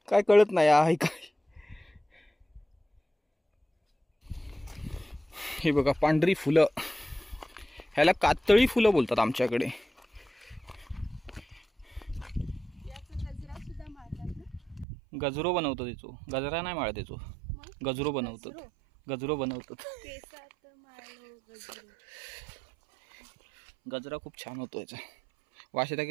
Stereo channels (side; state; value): left; drops out; at 14.9 s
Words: काय कळत नाही आहे काय. हे बघा पांढरी फुलं, ह्याला कातळी फुलं बोलतात आमच्याकडे. गजरो बनवतो त्याचो, गजरा नाही माळ त्याचो, गजरो बनवतात. गजरो बनवतात. गजरा खूप छान होतो याचा. वास येता